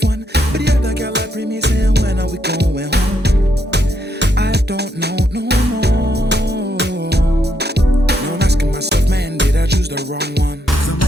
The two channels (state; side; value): normal; both; correlation 0.77